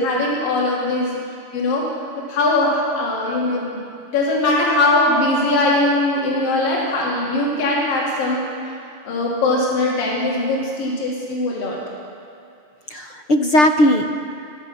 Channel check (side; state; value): right; late; 6.7 ms